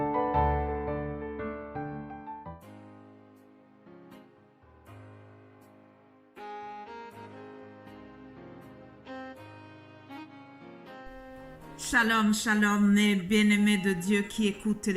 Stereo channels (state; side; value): identical; both; correlation 1.00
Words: Shalom, shalom, mes bien-aimés de Dieu qui écoutent